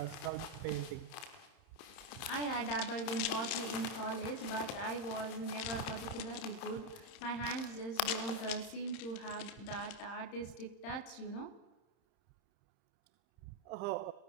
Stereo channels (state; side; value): late; right; 31 ms